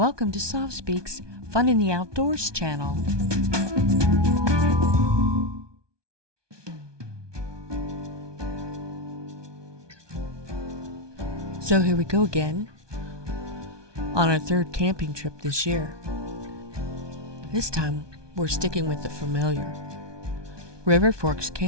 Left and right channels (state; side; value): late; left; 1.2 ms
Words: to Soft Speak's Fun in the Outdoors channel. So here we go again on our third camping trip this year. This time we're sticking with the familiar Forks